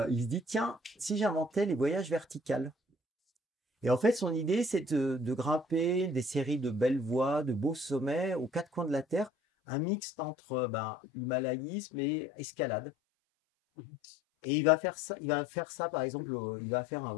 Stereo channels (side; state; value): right; drops out; at 9.3 s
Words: se dit, tiens, si j'inventais les voyages verticales. Et en fait, son idée, c'est de grimper des séries de belles voies, de beaux sommets aux quatre coins de la Terre, un mixte entre himalayisme et escalade. Et il va faire ça, par exemple, il va faire un